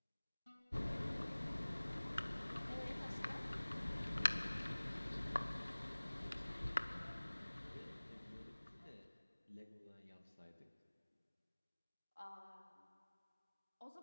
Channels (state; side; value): inverted; both; correlation -1.00